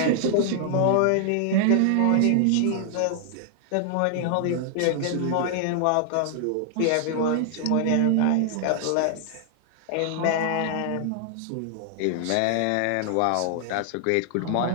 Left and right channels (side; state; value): both; different; correlation 0.00